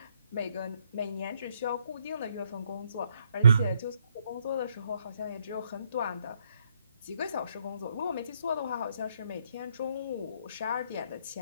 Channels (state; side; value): inverted; both; correlation -0.71